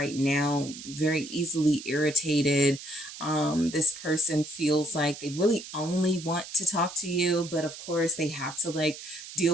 now very easily irritated. This person feels like they really only want to talk to you, but of course they have to like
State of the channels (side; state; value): right; noise; hiss, 13 dB below the sound